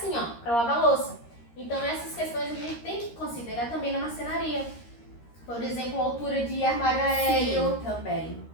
ó, para lavar louça. Então essas questões a gente tem que considerar também na marcenaria. Por exemplo, a altura de armário aéreo. Sim, também.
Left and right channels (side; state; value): right; late; 13 ms